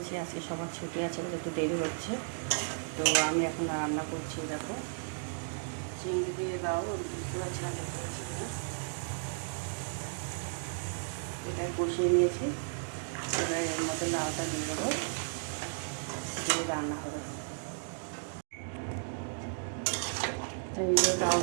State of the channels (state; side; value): silent; left; digital silence